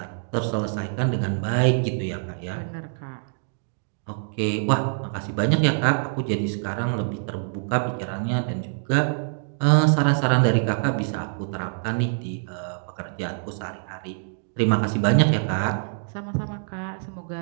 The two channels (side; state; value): left; silent; digital silence